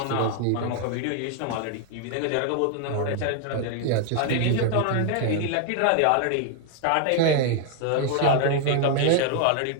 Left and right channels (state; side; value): different; both; correlation 0.00